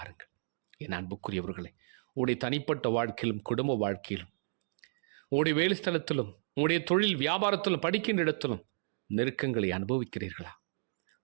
என் அன்புக்குரியவர்களே, உடைய தனிப்பட்ட வாழ்க்கையிலும் குடும்ப வாழ்க்கையிலும் உடைய வேலை ஸ்தலத்திலும் உடைய தொழில் வியாபாரத்திலும் படிக்கின்ற இடத்திலும் நெருக்கங்களை அனுபவிக்கிறீர்களா?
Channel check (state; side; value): silent; left; digital silence